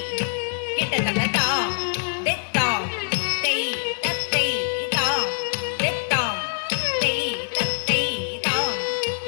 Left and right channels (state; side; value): silent; right; digital silence